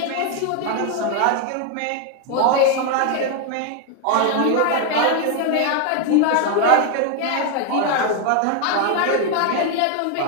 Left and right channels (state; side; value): different; both; correlation 0.01